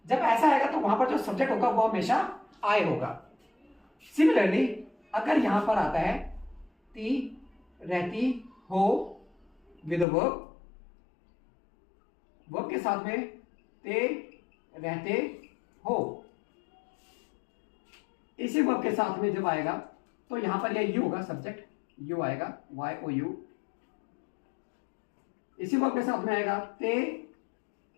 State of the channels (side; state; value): right; drops out; at 10.1 s